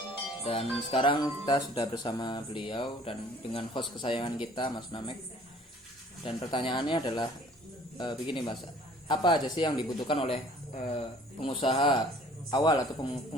Dan sekarang kita sudah bersama beliau dan dengan host kesayangan kita, Mas Namek. Dan pertanyaannya adalah begini, Mas, apa aja sih yang dibutuhkan oleh pengusaha awal atau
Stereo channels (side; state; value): both; normal; correlation 0.53